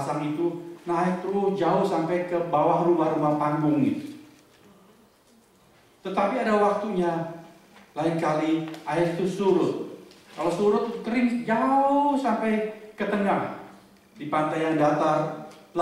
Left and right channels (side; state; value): both; identical; correlation 1.00